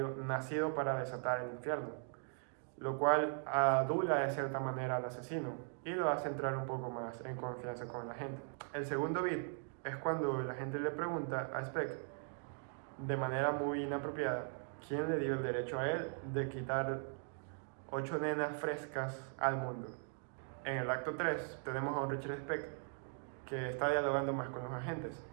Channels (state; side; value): silent; left; 51 dB below the other